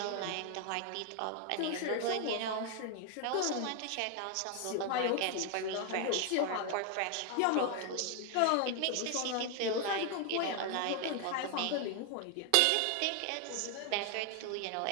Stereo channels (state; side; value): different; both; correlation 0.01